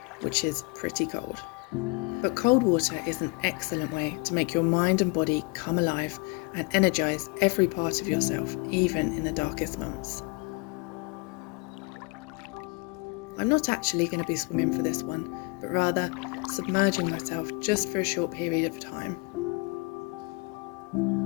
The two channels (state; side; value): quieter; right; 29.0 dB